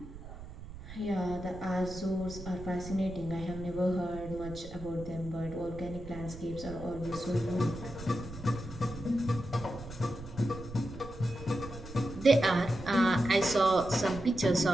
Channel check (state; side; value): noise; right; rumble, 13 dB below the sound